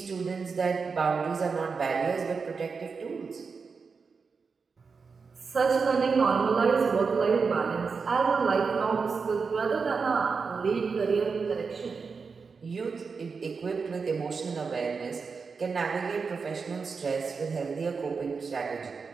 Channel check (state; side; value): quieter; left; 5.1 dB